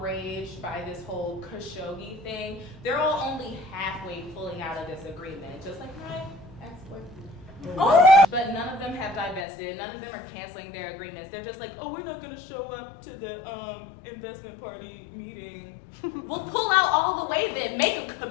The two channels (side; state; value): right; drops out; at 9.5 s